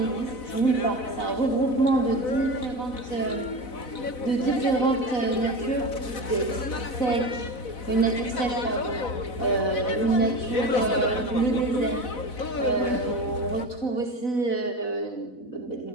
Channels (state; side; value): late; right; 4.0 ms